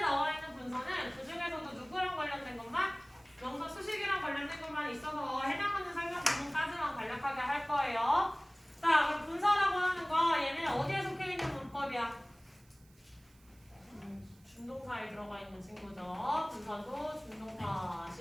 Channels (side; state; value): right; noise; hiss, 30 dB below the sound